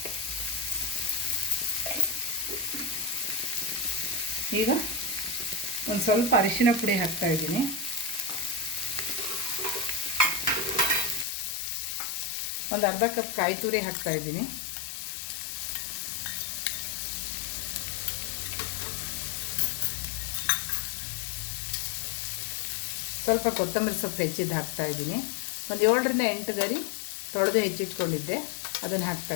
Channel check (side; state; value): right; drops out; at 11.2 s